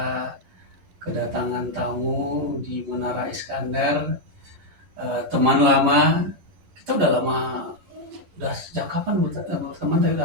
kedatangan tamu di Menara Iskandar, teman lama. Kita udah lama, udah sejak kapan berteman?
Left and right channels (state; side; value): late; left; 10 ms